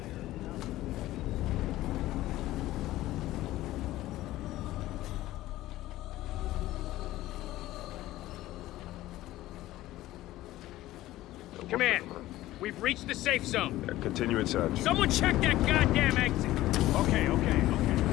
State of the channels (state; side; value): quieter; right; 15.9 dB